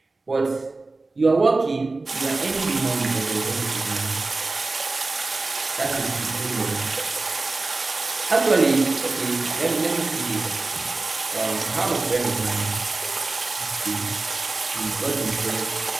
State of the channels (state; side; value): quieter; left; 3.4 dB